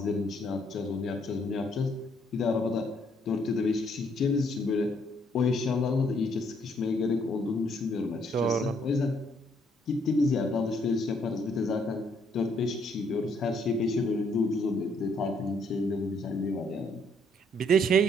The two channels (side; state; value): both; normal; correlation 0.69